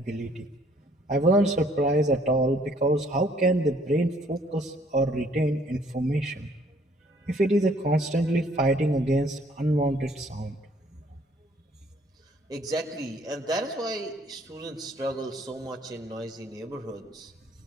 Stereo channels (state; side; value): normal; both; correlation 0.61